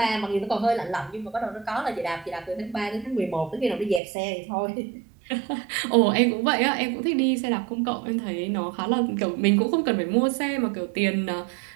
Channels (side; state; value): left; drops out; at 4.0 s